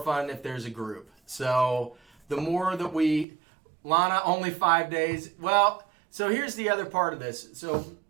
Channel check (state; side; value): drops out; left; at 3.2 s